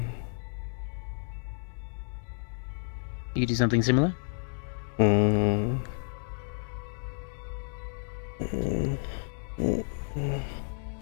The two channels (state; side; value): silent; right; digital silence